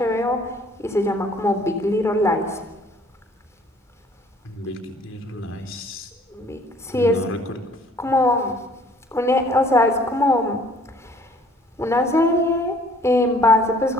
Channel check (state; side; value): normal; both; correlation 0.57